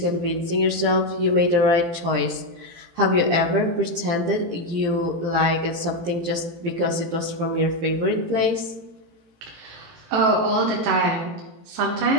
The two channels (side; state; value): left; late; 17 ms